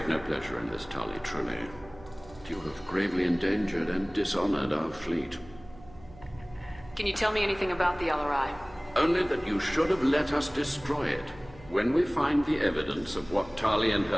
no pleasure in this, Tali, truly. You have gravely endangered and dishonored our fleet. Can you tell me anything about the Alarai? Only that you should have let us destroy it. When we find the evidence of what Tali and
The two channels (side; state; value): right; noise; hum, 21 dB below the sound